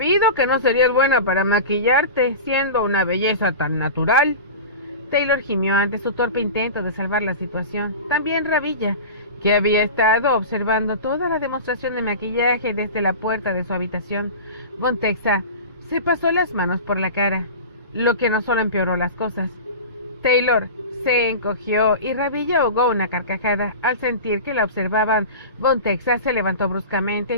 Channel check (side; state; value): both; inverted; correlation -0.31